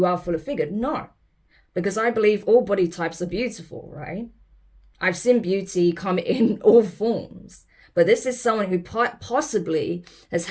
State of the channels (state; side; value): identical; both; correlation 1.00